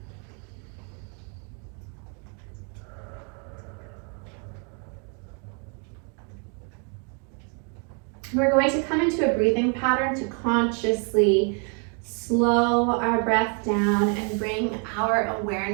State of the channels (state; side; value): quieter; left; 38.2 dB